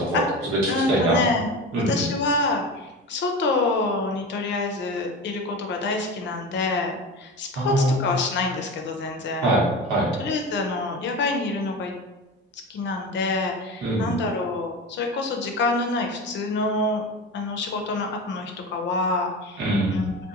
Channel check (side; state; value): both; normal; correlation 0.28